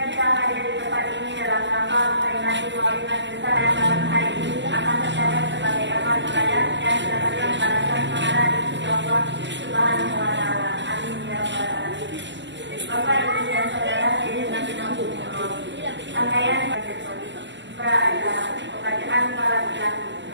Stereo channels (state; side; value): late; left; 0.53 ms